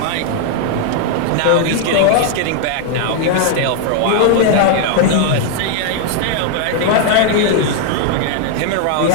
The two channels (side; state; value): both; different; correlation 0.00